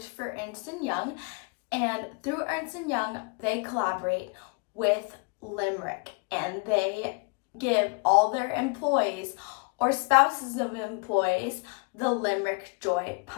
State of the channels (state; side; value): quieter; right; 31.6 dB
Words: for Ernst and Young, and through Ernst and Young they collaborate with Limerick and they give all their employees or spouses of employees the Limerick Joy